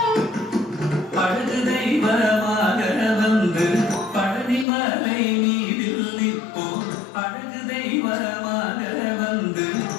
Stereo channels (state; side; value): drops out; right; at 4.7 s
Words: அழகு தெய்வமாக வந்து பழனிமலை மீதில் நிற்போம். அழகு தெய்வமாக வந்து